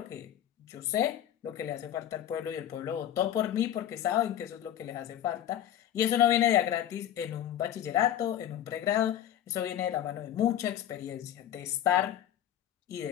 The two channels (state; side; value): quieter; right; 10.9 dB